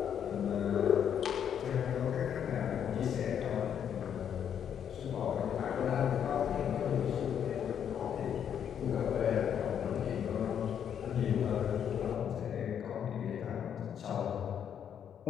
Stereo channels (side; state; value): right; quieter; 8.7 dB